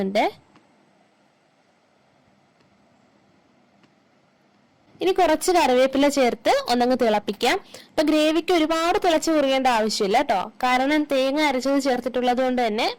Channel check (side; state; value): both; identical; correlation 1.00